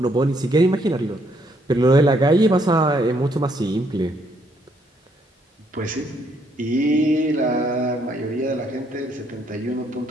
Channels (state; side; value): normal; both; correlation 0.71